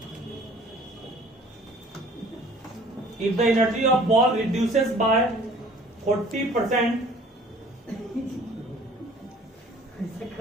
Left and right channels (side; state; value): both; normal; correlation 0.52